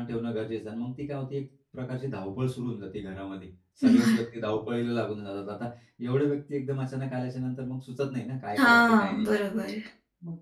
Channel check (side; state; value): both; identical; correlation 1.00